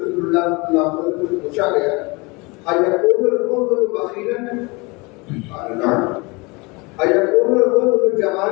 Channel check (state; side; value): quieter; right; 26.8 dB